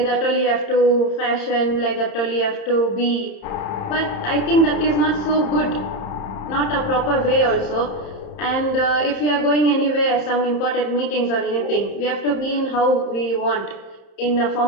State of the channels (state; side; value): late; right; 30 ms